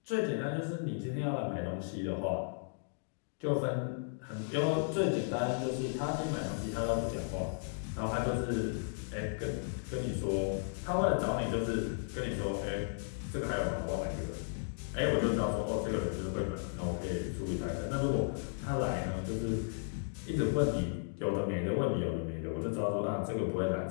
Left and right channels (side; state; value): right; silent; digital silence